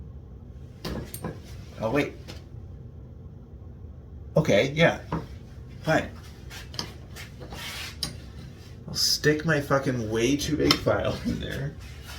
Oh, wait. Okay, yeah. Fine. I'll stick my fucking way too big file in there.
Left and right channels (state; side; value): identical; both; correlation 1.00